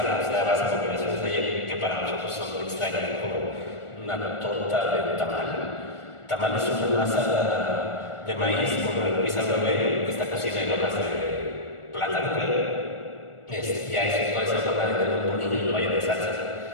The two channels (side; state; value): right; late; 1.4 ms